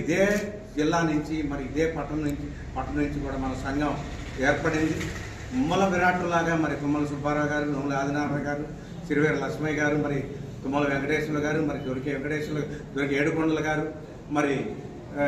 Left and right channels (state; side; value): identical; both; correlation 1.00